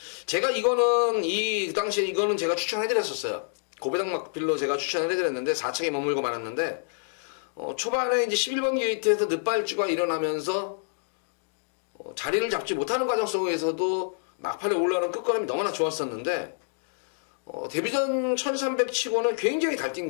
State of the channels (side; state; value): right; silent; digital silence